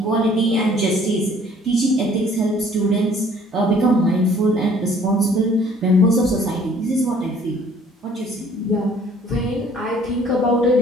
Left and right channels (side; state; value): both; normal; correlation 0.57